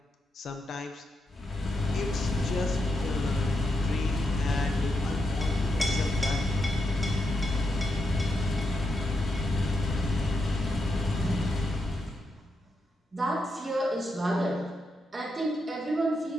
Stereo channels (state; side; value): normal; both; correlation 0.84